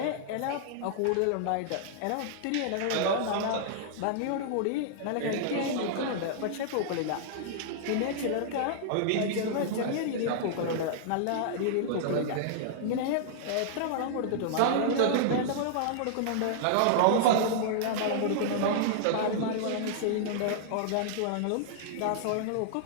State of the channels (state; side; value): different; both; correlation -0.01